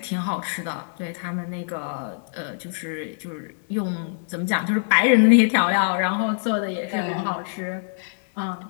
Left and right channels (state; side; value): silent; right; 63 dB below the other